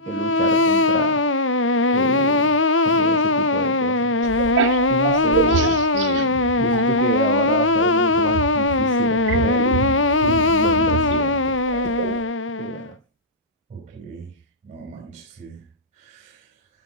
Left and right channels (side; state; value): both; normal; correlation -0.15